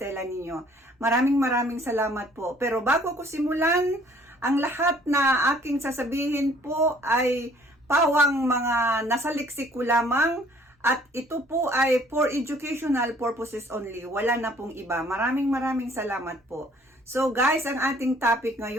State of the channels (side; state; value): both; normal; correlation 0.58